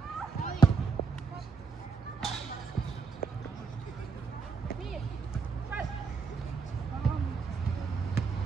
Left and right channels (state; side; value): quieter; left; 5.0 dB